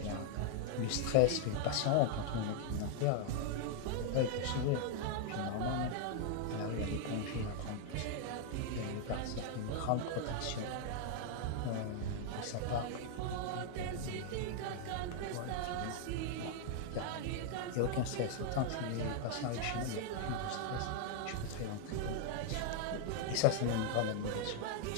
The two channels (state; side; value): different; both; correlation 0.00